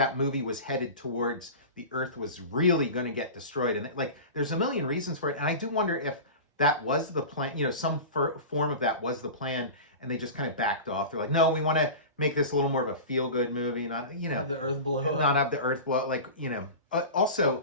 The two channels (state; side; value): inverted; both; correlation -0.31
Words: movie was headed towards the Earth was really going to get destroyed, and like there's a million reasons for it. And I do wonder if that was the plan. Some form of that was the plan, and they just kind of backed off. They're like, no, we want to make this a little more of a feel-good movie, not have the Earth blow up. Not have the Earth blow up. Like